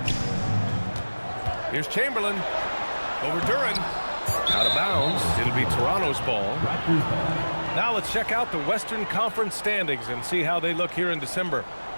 Here's Chamberlain over Duran. Out of bounds. It'll be Toronto's ball. Now let's check out the Western Conference standings and see how they look here in December.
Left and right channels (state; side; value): inverted; both; correlation -1.00